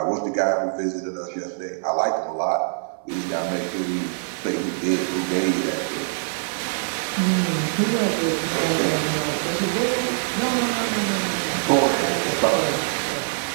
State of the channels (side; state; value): left; silent; 60 dB below the other